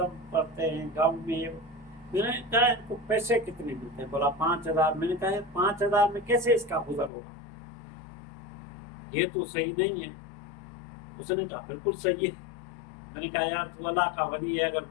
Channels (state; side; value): drops out; right; at 7.1 s